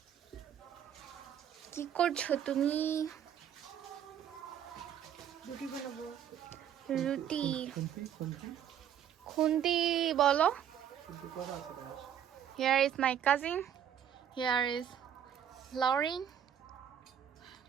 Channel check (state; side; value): quieter; left; 9.4 dB